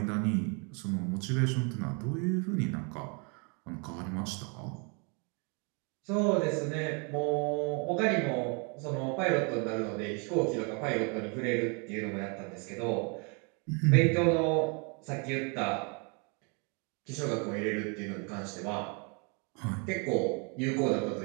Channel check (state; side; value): quieter; left; 34.5 dB